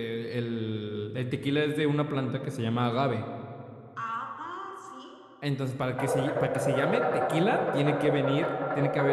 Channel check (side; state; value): both; identical; correlation 1.00